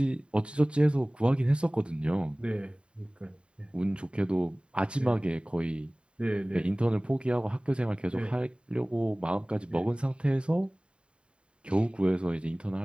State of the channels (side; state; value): left; late; 0.054 ms